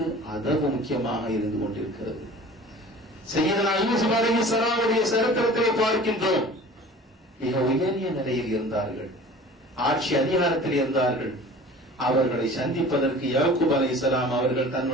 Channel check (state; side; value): normal; both; correlation 0.43